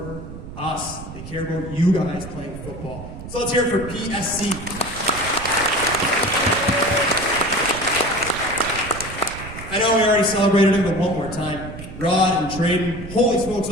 us. They care about you guys playing football. So let's hear it for PSC. I know we already celebrated him, but one more time. Rod and Traden, holy smokes,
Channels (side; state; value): right; noise; rumble, 12 dB below the sound